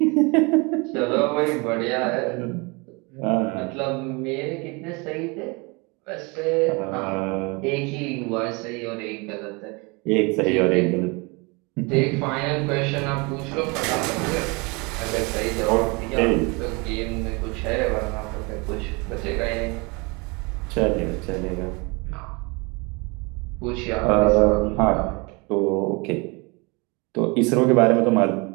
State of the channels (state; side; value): quieter; left; 28.2 dB